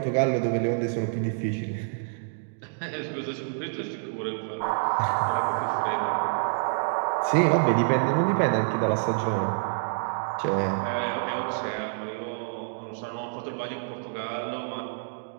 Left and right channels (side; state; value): left; silent; digital silence